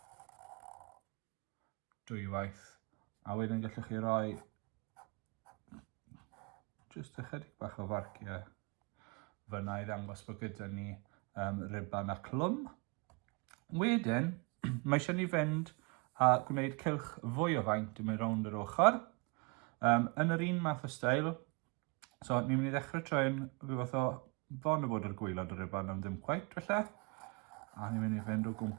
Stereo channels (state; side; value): quieter; left; 30.6 dB